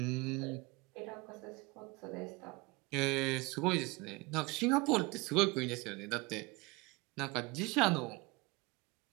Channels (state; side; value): quieter; left; 24.8 dB